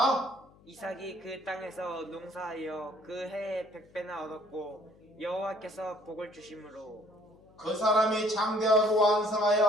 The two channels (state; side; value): noise; left; hum, 27 dB below the sound